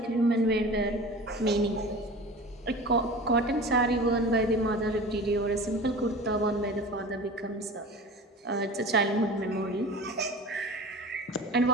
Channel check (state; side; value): normal; both; correlation 0.36